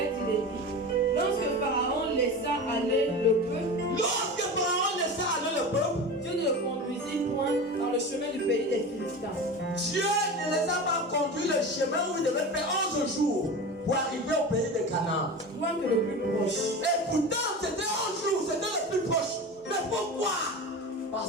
il est dit, lorsque Pharaon laissa aller le peuple, Dieu ne le conduisit point dans le chemin du pays des Philistins. Dieu ne les a pas conduits le chemin où ils devaient faire 11 jours pour arriver au pays de Canaan. Point que le plus proche. Et pourtant, c'était 11 jours, c'était le plus proche. Mais pourquoi?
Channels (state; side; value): normal; both; correlation 0.29